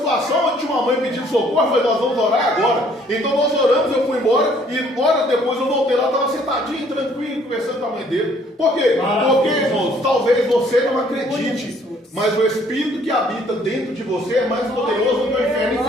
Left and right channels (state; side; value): normal; both; correlation 0.61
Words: onde tinha uma mãe pedindo socorro, eu falei, nós vamos orar agora. Então nós oramos, eu fui embora, e horas depois eu voltei lá, estava sentadinho, tranquilo, conversando com a mãe dele. Por quê? Porque, irmãos, talvez você não acredite, mas o Espírito que habita dentro de você é mais poderoso do que o inferno